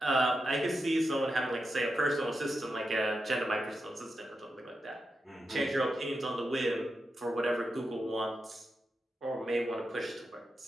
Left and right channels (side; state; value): both; normal; correlation 0.88